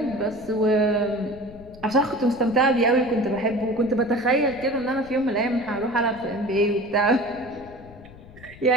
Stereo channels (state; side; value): noise; left; rumble, 20 dB below the sound